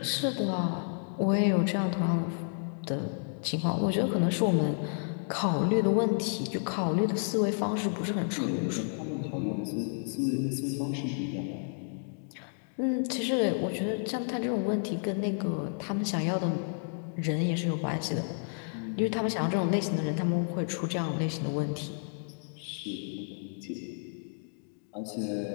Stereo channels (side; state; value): right; silent; digital silence